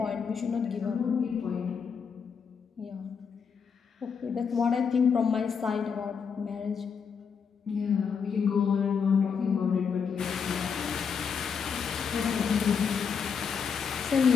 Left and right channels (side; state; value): right; quieter; 6.4 dB